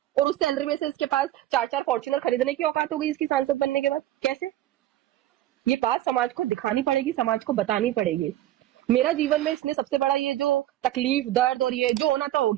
और उस सैलरी में से इसके पास 4-4 फॉर्च्यूनर खरीदने की औकात हो गई इसकी सांसद बनने के बाद। कैसे? ये बात समाज को दिखानी पड़ेगी, समाज को बतानी पड़ेगी। मेरा जीवन में इसने सबसे बड़ा ये जो तकलीफ, दर्द और ये जो होना था हो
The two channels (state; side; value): quieter; left; 13.9 dB